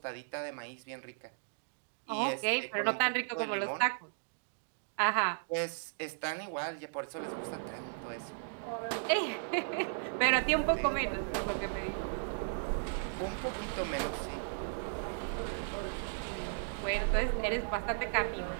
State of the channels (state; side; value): silent; left; digital silence